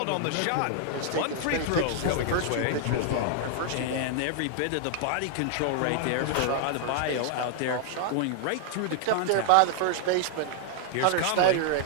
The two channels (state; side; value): different; both; correlation 0.00